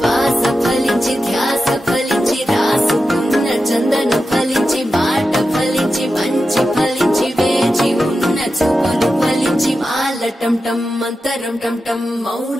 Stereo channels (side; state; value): both; normal; correlation 0.91